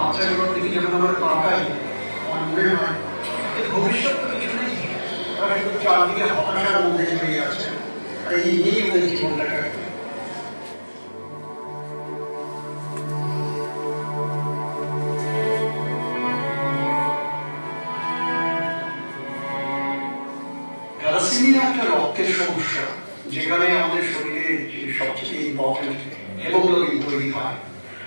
দিকে যখন আমরা তাকাই, আমার মনে হয় ভবিষ্যৎ তো কিছু নেই, তারা কিন্তু চারদিকে হতাশার মধ্যে জড়িয়ে আছে, আর এই নিয়েই ওদের জীবনটা কাটবে। থ্যালাসেমিয়া একটা রক্তের সমস্যা, যেখানে আমাদের শরীরে সবচেয়ে ইম্পর্টেন্ট হেমোগ্লোবিন তৈরি হয়,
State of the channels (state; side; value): inverted; both; correlation -1.00